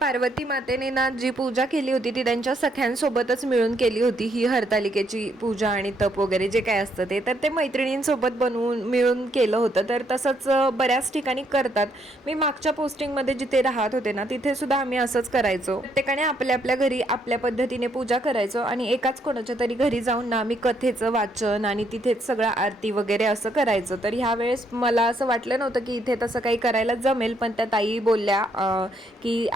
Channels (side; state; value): both; normal; correlation 0.73